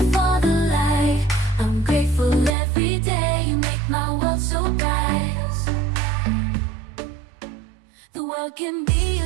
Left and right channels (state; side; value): drops out; left; at 2.6 s